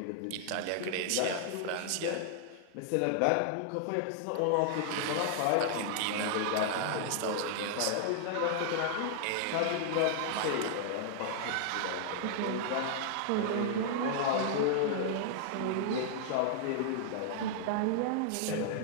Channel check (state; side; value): different; both; correlation -0.01